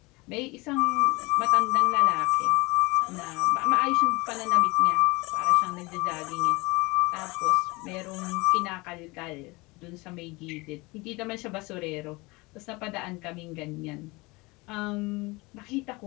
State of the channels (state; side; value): quieter; right; 24.4 dB